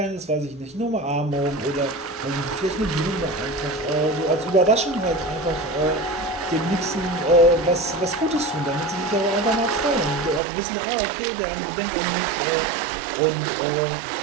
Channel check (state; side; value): drops out; left; at 10.4 s